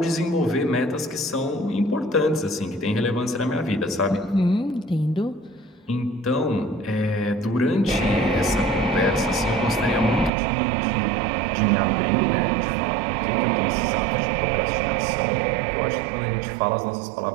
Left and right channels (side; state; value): left; drops out; at 10.3 s